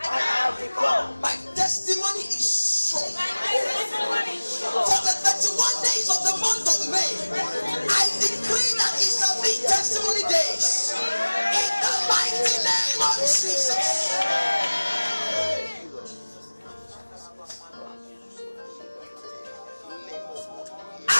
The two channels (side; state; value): both; inverted; correlation -1.00